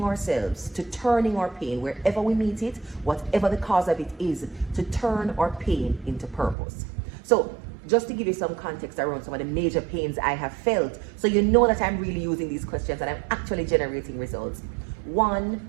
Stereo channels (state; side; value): drops out; left; at 6.6 s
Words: ourselves to turning our pain wherever we meet it, whatever the cause of it is, to turn our pain into purpose. So just to give you some context around some of the major pains I have felt, so you know that I'm really using these questions and I'm actually generating results.